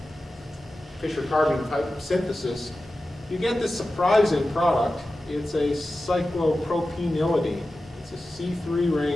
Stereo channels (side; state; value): both; normal; correlation 0.94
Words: Fischer-Carbon type of synthesis. You get this surprising product. It's a cyclopropenylidene. It's a C3